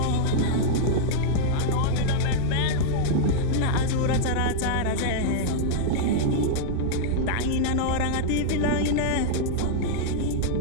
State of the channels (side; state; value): both; different; correlation -0.01